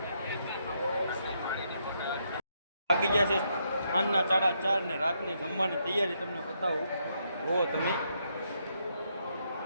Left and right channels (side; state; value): both; inverted; correlation -0.77